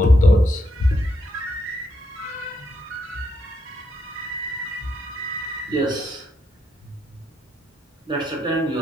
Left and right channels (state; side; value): normal; both; correlation 0.79